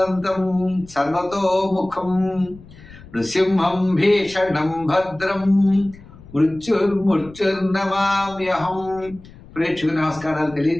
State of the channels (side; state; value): left; noise; rumble, 20 dB below the sound